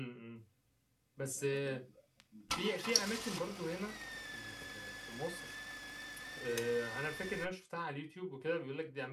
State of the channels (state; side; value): identical; both; correlation 1.00